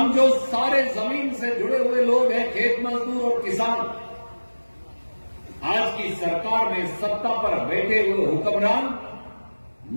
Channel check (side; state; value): both; inverted; correlation -1.00